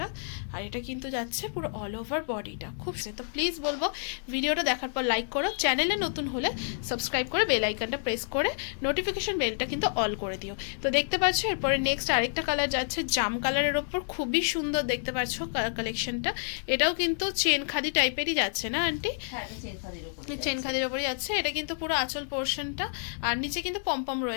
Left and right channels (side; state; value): right; silent; digital silence